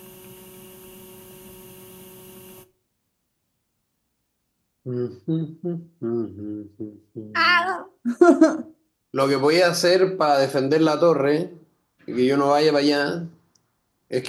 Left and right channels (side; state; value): both; identical; correlation 1.00